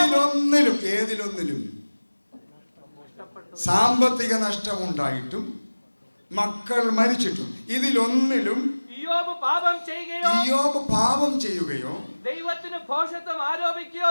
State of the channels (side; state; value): both; inverted; correlation -1.00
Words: ഏതിലൊന്നിലും സാമ്പത്തിക നഷ്ടമുണ്ടായിട്ടും മക്കൾ മരിച്ചിട്ടും ഇതിലൊന്നിലും ഇയ്യോബ് പാപം ചെയ്യുകയോ ദൈവത്തിന് ഭോഷത്വം ആരോപിക്കുകയോ